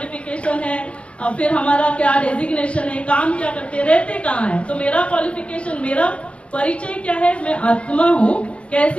है, और फिर हमारा क्या डेजिग्नेशन है, काम क्या करते, रहते कहाँ है। तो मेरा क्वालिफिकेशन, मेरा परिचय क्या है, मैं आत्मा हूँ।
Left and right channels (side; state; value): right; late; 0.060 ms